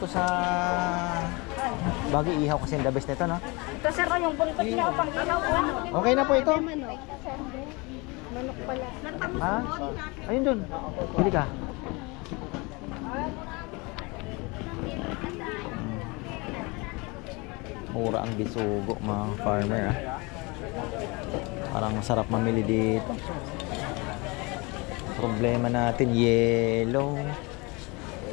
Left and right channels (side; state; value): right; quieter; 26.9 dB